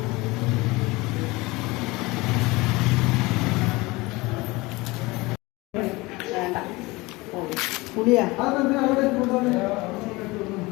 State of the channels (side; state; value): right; quieter; 22.6 dB